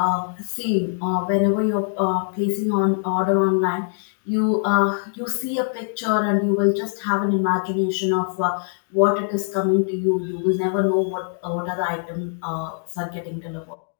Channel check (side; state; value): right; silent; 64 dB below the other